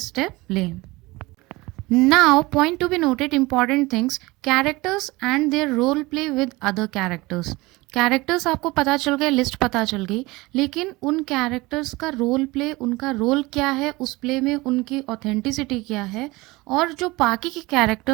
लें। Now, point to be noted, important things, characters and their role play with other characters। Characters आपको पता चल गए, लिस्ट पता चल गई, लेकिन उन कैरेक्टर्स का रोल प्ले, उनका रोल क्या है उस प्ले में, उनकी ऑथेंटिसिटी क्या है और जो बाकी के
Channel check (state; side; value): quieter; left; 21.9 dB